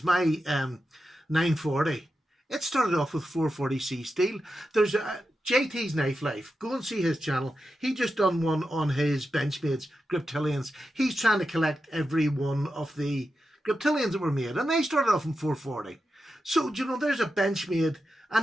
my 940. It started off with 440C steel. There's JT's Knife Life. Go and see his channel. He just done one on his Benchmade's Griptilians. He's trying to collect every one of the Griptilians that were made, and they started off in 440. So, you know, there's a Benchmade,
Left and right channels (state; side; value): normal; both; correlation 0.89